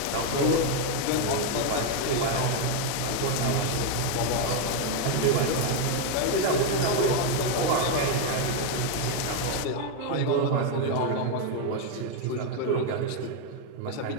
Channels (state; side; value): different; both; correlation 0.01